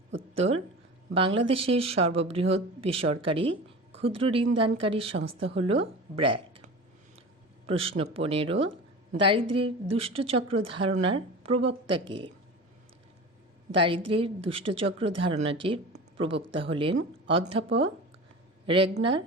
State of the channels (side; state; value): both; normal; correlation 0.33